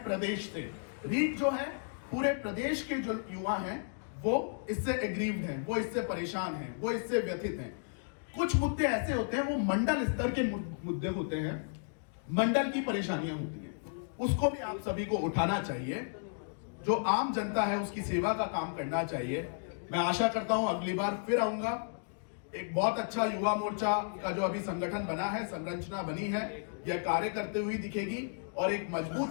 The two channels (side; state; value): right; silent; digital silence